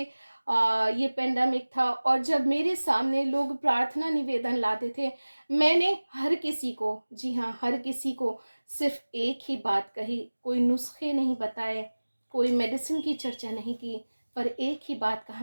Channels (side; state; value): both; inverted; correlation -1.00